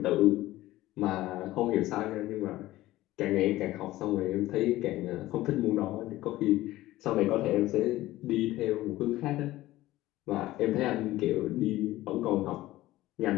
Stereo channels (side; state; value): right; quieter; 16.5 dB